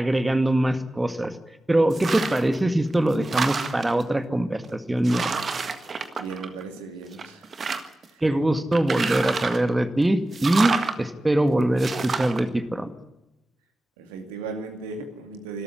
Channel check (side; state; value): both; normal; correlation 0.95